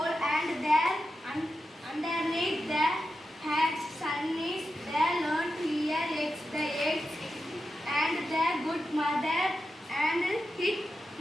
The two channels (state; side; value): normal; both; correlation 0.90